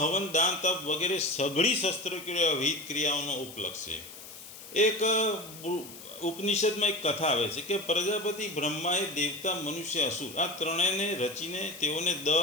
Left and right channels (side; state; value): left; noise; hiss, 15 dB below the sound